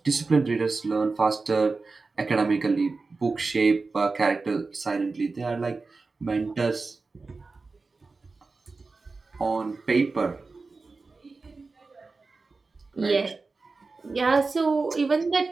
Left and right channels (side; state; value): left; quieter; 3.9 dB